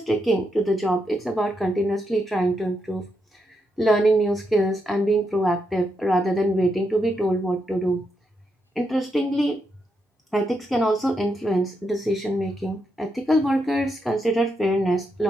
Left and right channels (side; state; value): both; normal; correlation 0.82